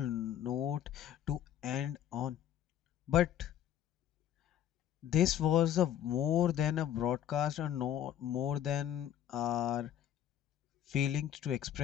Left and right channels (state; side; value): quieter; right; 10.8 dB